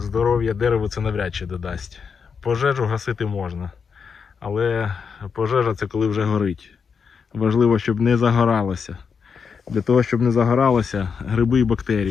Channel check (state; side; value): quieter; right; 6.1 dB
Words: дереву це навряд чи додасть. Пожежу гасити можна, але пожежа – це коли вже горить. Важливо, щоб не загоралося. Для того, щоб не загоралося, гриби і